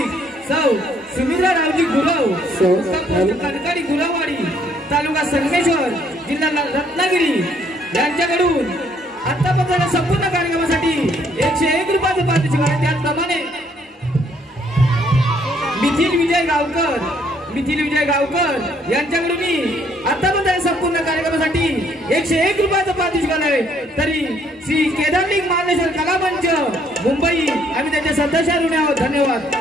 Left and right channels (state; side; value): normal; both; correlation 0.66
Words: सौ सुमित्रा रावजी गुरव कणकणी गुरववाडी तालुका संगमेश्वर जिल्हा रत्नागिरी यांच्याकडून आतापर्यंत संपूर्ण कार्यक्रमासाठी 101 रुपयाचं पारितोषिक आहे। त्याचप्रमाणे मिथिल विजय गावकर यांच्याकडून आतापर्यंत संपूर्ण कार्यक्रमासाठी 101 रुपयाचं पारितोषिक आहे। तरी श्री केदारलिंग मार्लेश्वर कलामंच मुंबई आम्ही त्यांचे सदस्य ऋणी आहोत। धन्यवाद।